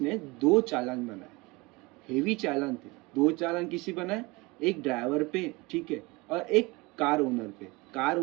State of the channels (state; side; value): quieter; left; 24.3 dB